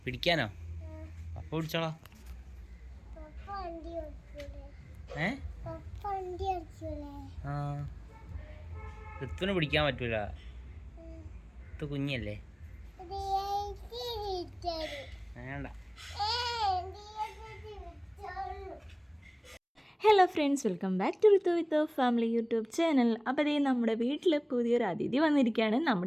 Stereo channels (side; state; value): both; identical; correlation 1.00